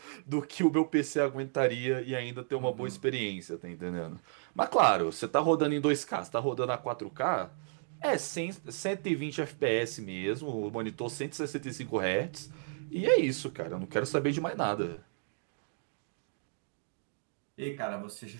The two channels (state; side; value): silent; left; digital silence